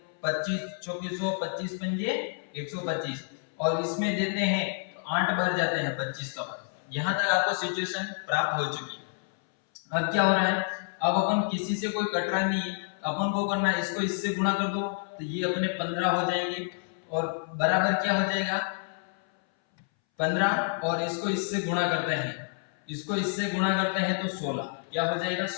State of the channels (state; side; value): silent; right; 59 dB below the other